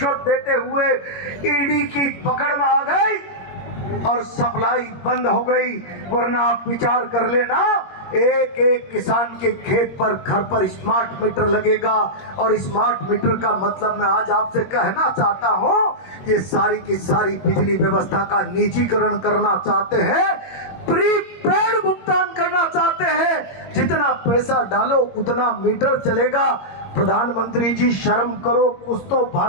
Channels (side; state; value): right; late; 21 ms